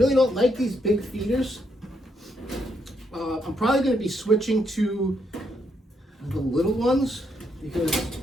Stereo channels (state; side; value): normal; both; correlation 0.77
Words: don't like these big feeders. I'm probably going to be switching to the little ones because